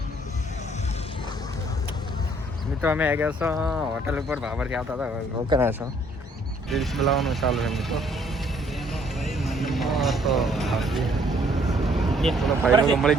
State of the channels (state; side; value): normal; both; correlation 0.63